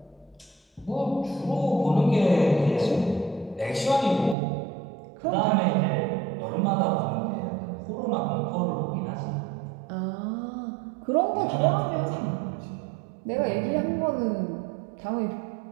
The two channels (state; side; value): drops out; left; at 4.4 s